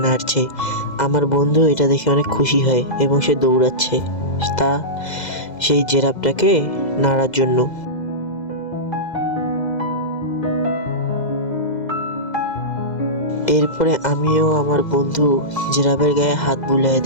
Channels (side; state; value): right; late; 2.0 ms